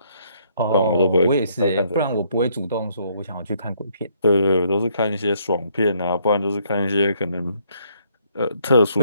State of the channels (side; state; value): both; inverted; correlation -0.68